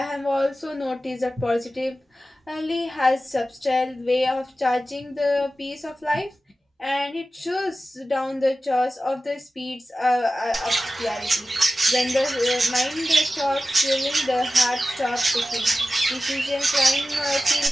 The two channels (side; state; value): both; normal; correlation 0.94